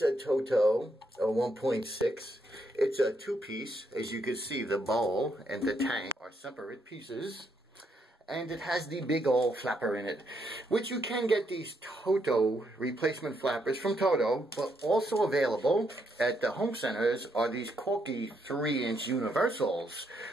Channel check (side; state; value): both; normal; correlation 0.76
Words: a toto, a 1.6. It's a two-piece. As you can see, the bowl and the tank are separate pieces. And it has the big old flapper in it, which you can get these toto replacement flappers from Toto, but also available at the home centers are these Corky 3-inch universals,